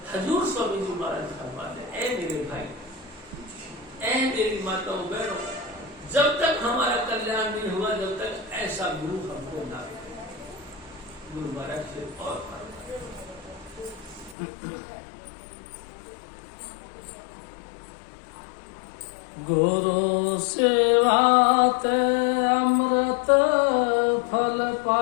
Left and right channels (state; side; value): drops out; right; at 14.4 s